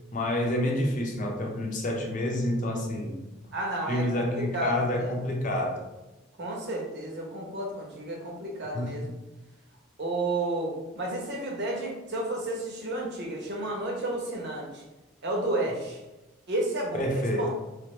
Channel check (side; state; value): both; normal; correlation 0.35